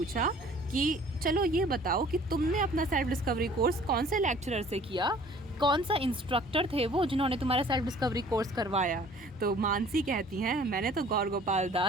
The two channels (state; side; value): normal; both; correlation 0.52